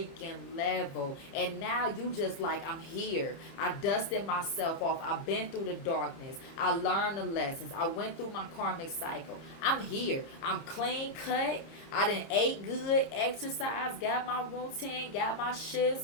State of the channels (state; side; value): late; right; 30 ms